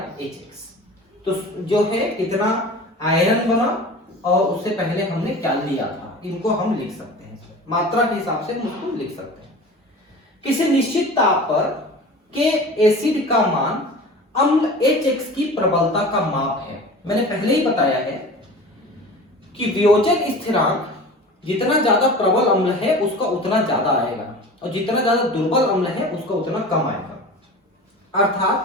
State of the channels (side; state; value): both; normal; correlation 0.37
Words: Hx, तो जो है कितना आयरन बना और उससे पहले हमने क्या लिया था, इनको हम लिख सकते हैं, मात्रा के हिसाब से उसको लिख सकते हैं। किसी निश्चित ताप पर के एसिड का मान अम्ल Hx की प्रबलता का माप है। मैंने पहले ही बताया है कि वियोजन स्थिरांक जितना ज्यादा प्रबल अम्ल है उसका उतना ज्यादा आएगा और जितना ज्यादा दुर्बल अम्ल है उसका उतना कम आएगा।